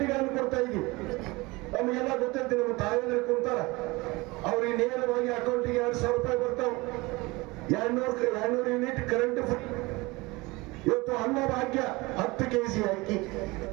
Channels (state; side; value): quieter; left; 23.2 dB